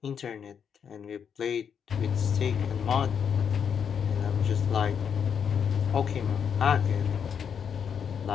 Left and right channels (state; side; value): quieter; right; 7.4 dB